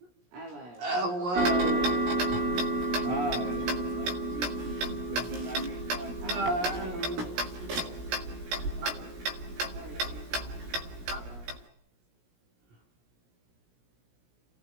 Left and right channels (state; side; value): late; left; 17 ms